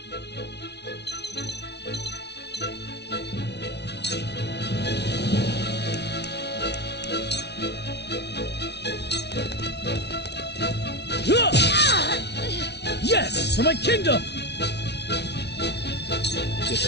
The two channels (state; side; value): late; right; 0.50 ms